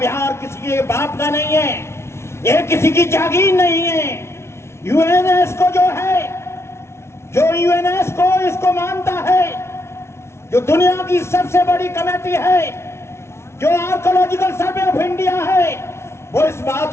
किसी के बाप का नहीं है, ये किसी की जागीर नहीं है। यूएनएस्को जो है, जो यूएनएस्को इसको मानता है, जो दुनिया की सबसे बड़ी कमेटी है, जो आर्कोलॉजिकल सर्वे ऑफ इंडिया है, वो इस बात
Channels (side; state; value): right; late; 0.13 ms